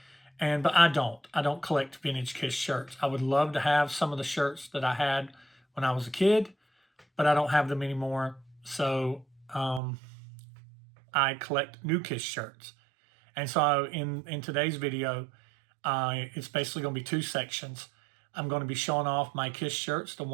but I don't. I don't collect vintage Kiss shirts. I would love to have some of the shirts that I had when I was a kid, but I don't have them anymore. So I collect new Kiss shirts. And so in today's video, it's basically going to be two sections. I'm going to be showing off my Kiss shirts, the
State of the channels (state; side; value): drops out; left; at 9.8 s